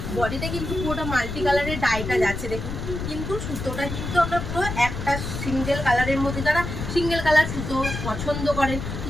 বডিতে কিন্তু পুরোটা মাল্টি কালারের ডাইটা যাচ্ছে দেখুন, কিন্তু সুতোটা কিন্তু আপনার পুরো একটা সিঙ্গেল কালারের মধ্যে। যারা সিঙ্গেল কালার সুতো পছন্দ করেন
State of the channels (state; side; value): noise; left; rumble, 5 dB below the sound